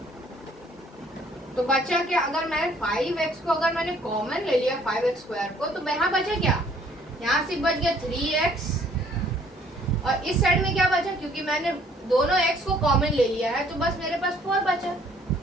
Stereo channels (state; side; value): normal; both; correlation 0.60